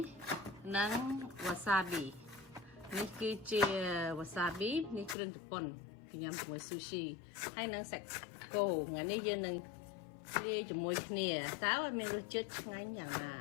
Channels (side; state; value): right; drops out; at 5.2 s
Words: នឹង wasabi នេះគឺជា wasabi នេះគ្រឿងជប៉ុនគេញ៉ាំជាមួយ sushi ហើយនឹងសាច់គោថ្ងៃនេះយើងនឹងលាយជាមួយគ្នាតើមានរសជាតិឆ្ងាញ់យ៉ាងណា